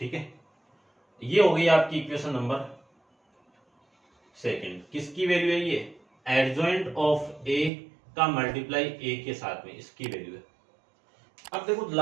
है, ये हो गई आपकी इक्वेशन नंबर सेकंड। किसकी वैल्यू है? ये एडजॉइंट ऑफ a का मल्टीप्लाई a के साथ में, इसकी वैल्यू है। अब देखो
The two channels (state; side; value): drops out; left; at 7.7 s